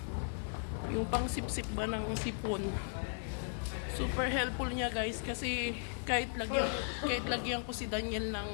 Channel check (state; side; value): silent; right; digital silence